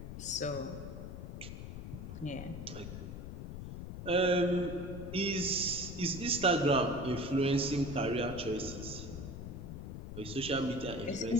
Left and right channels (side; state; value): left; noise; rumble, 9 dB below the sound